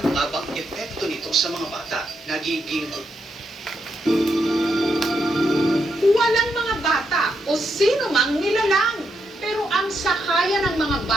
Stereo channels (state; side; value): normal; both; correlation 0.81